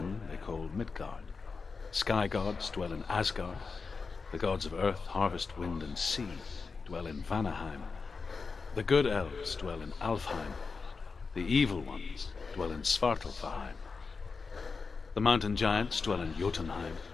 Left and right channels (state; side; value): quieter; right; 4.7 dB